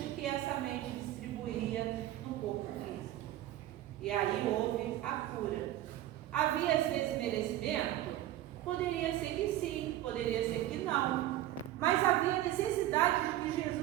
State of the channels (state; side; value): quieter; left; 14.1 dB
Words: que essa mente distribuía no corpo físico. E aí houve a cura. Havia esse desmerecimento? Poderia ser que sim, poderia ser que não. Mas havia necessidade de que